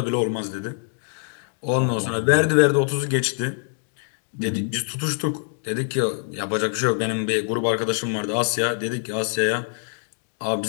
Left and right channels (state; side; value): silent; right; digital silence